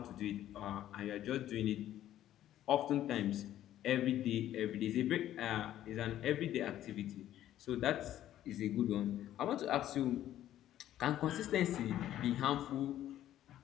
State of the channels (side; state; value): right; quieter; 12.4 dB